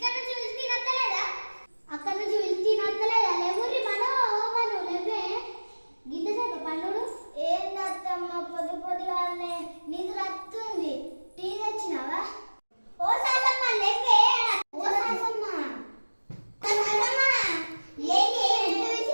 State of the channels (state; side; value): inverted; both; correlation -1.00